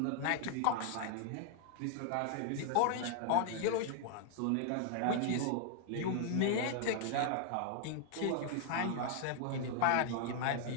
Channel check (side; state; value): both; different; correlation 0.00